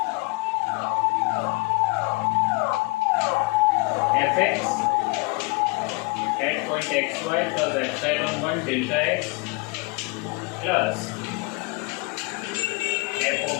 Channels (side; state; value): right; quieter; 28.1 dB